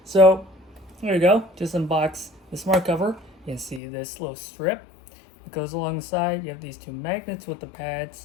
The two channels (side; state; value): right; drops out; at 3.8 s